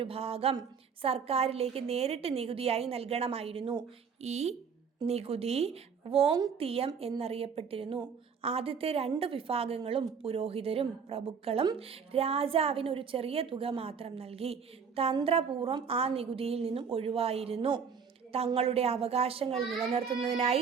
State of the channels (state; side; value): quieter; left; 6.3 dB